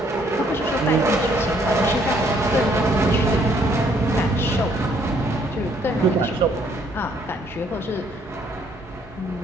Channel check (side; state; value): both; normal; correlation 0.66